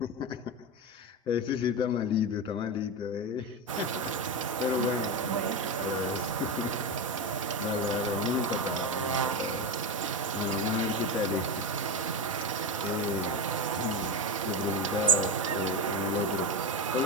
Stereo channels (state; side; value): normal; both; correlation 0.16